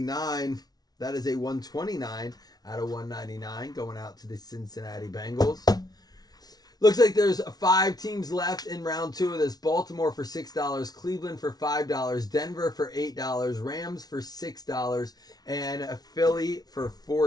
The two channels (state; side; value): late; right; 0.19 ms